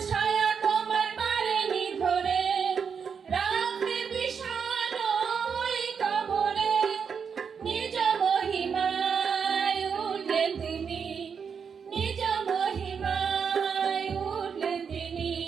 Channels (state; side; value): quieter; left; 6.5 dB